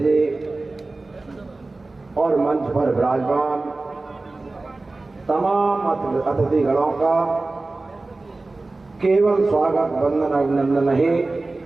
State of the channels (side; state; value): left; quieter; 3.3 dB